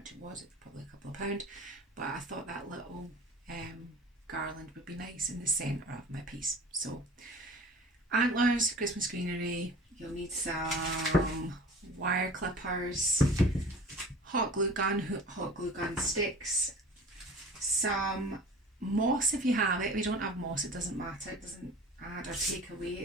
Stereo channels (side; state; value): both; normal; correlation 0.42